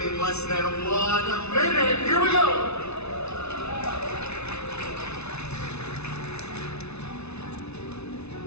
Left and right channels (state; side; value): late; right; 0.81 ms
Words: less than 1 minute. Here we go.